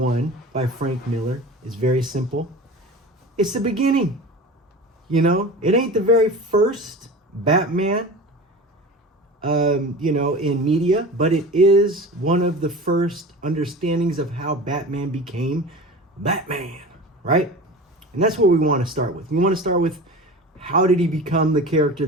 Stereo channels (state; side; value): normal; both; correlation 0.34